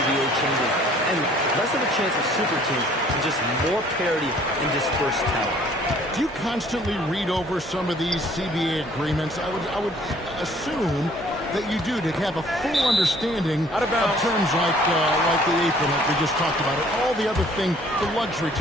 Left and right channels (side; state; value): both; normal; correlation 0.57